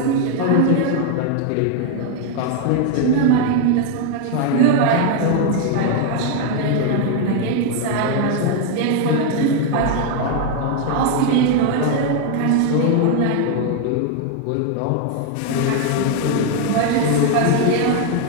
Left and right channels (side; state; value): both; different; correlation 0.00